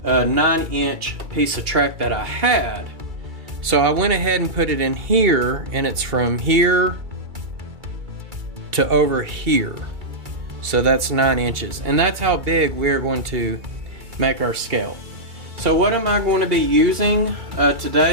9-inch piece of track that I had. So I went ahead and put it in here, and it's from here to over here. So that's 9 inches, and that's how big we're going to make our scale. So what am I going to be using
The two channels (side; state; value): left; late; 2.3 ms